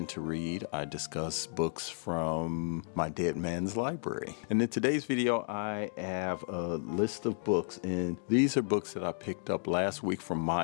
to read. I discuss books from my dead man's library. And in today's video I have a list of books, and these are books that I picked up last week from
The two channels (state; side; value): silent; right; digital silence